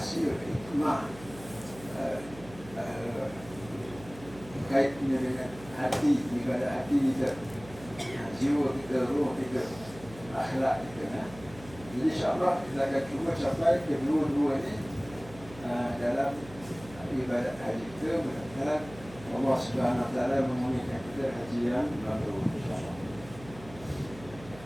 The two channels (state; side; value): noise; right; hum, 17 dB below the sound